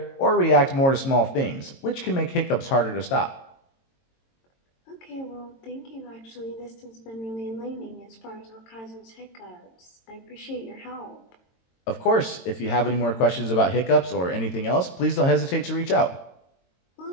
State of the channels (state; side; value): late; right; 22 ms